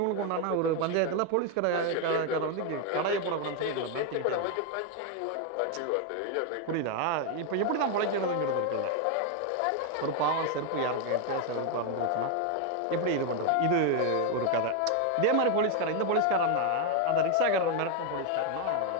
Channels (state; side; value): different; both; correlation 0.01